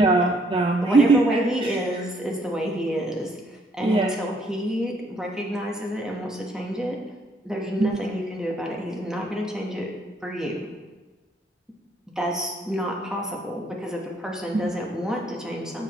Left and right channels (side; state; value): both; normal; correlation 0.67